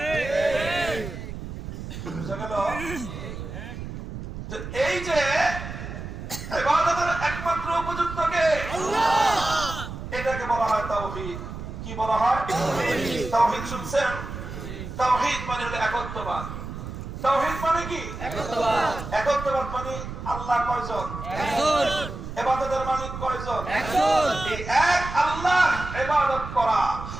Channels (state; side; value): noise; right; rumble, 9 dB below the sound